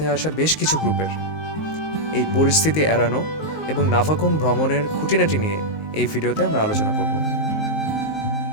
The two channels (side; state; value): right; late; 19 ms